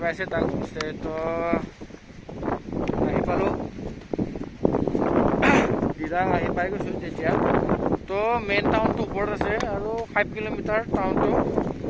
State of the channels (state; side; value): identical; both; correlation 1.00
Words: পাইছে তাক হোমষ্টে। তো আহি পালোঁ, দিৰাং আহি পাই গৈছোঁ তেতিয়া। তো মেইন টাউনটো ওপৰত আছে আৰু 5 কিলোমিটাৰ টাউনটো।